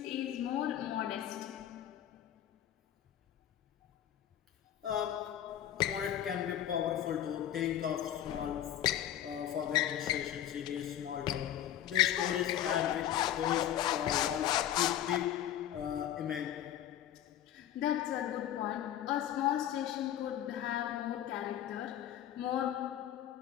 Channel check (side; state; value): right; quieter; 11.3 dB